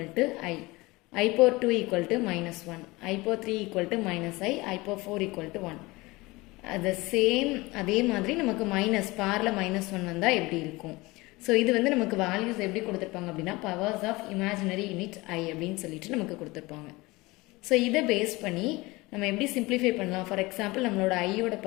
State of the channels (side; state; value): right; quieter; 22.2 dB